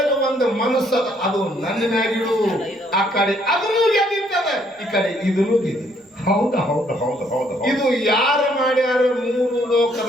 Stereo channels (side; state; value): both; normal; correlation 0.67